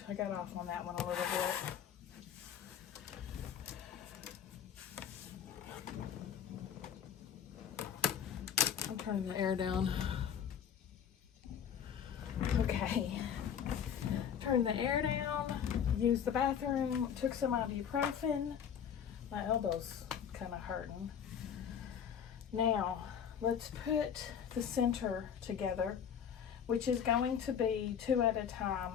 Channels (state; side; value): quieter; right; 8.3 dB